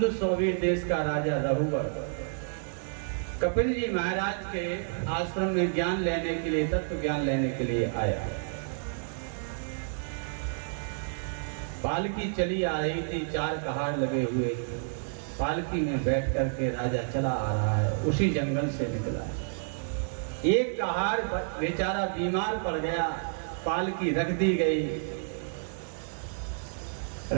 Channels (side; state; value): left; silent; digital silence